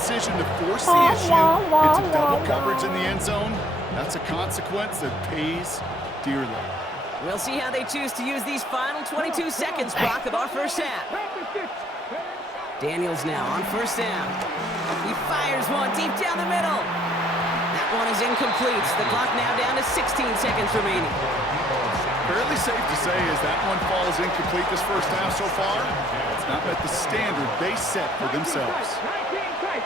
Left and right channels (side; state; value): both; normal; correlation 0.65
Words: to force the issue into double coverage in the end zone, that's a consequence that pays dearly. We'll see how they choose to use these final 22 seconds, Brock, of our first half. Daniels now on first down. He fires one deep down the middle. That one is incomplete. The clock now down to 16 seconds remaining. Fairly safe to say as that one falls incomplete this first half so far, it's not met the standard they set for themselves. 19 tight.